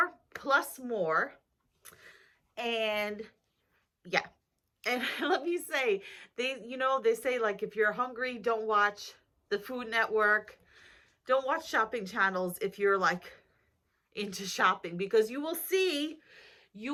plus more. And yeah, and let me say, they say, like, if you're hungry, don't watch the Food Network, don't watch shopping channels if you're like into shopping, because you will see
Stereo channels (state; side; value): identical; both; correlation 1.00